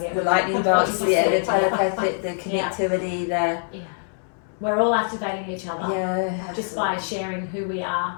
get. The lightning bolts, the telepathic, the connectivity, we're all activating each other just by sharing who we are,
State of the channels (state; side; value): silent; right; 63 dB below the other